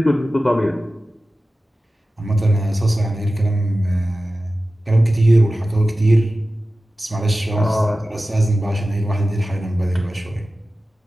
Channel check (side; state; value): both; normal; correlation 0.95